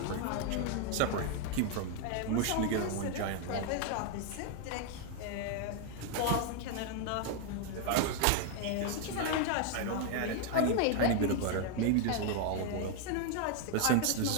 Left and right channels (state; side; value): different; both; correlation 0.00